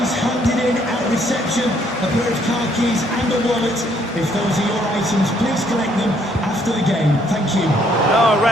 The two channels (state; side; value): normal; both; correlation 0.67